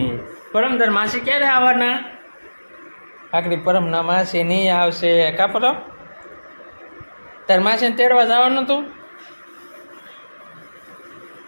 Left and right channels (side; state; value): both; inverted; correlation -1.00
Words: પરમ તાર માસી ક્યારે આવવાના? આખરી પરમ ના માસી નહીં આવશે કા પરમ? તાર માસીને તેડવા જવાનું તું